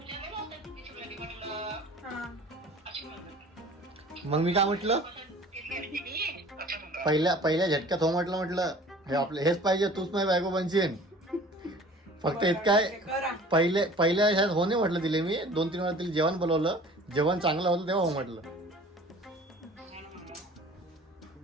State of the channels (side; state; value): both; normal; correlation 0.46